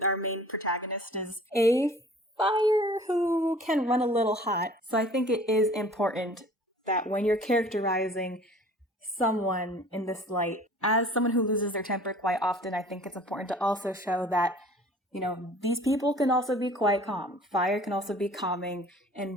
Our main protagonist is a fire who can run a little hot. So I think it is important that when you're characterizing someone in this light, as someone who loses their temper quite often, I think it's important to also show that, you know, these people can also be quite calm. Fire can also be calming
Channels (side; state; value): both; normal; correlation 0.48